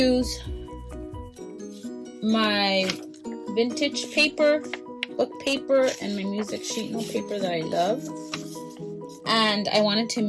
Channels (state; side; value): identical; both; correlation 1.00